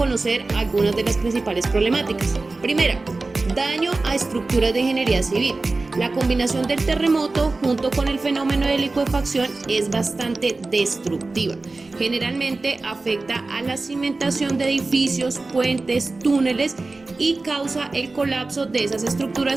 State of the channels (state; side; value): quieter; left; 3.4 dB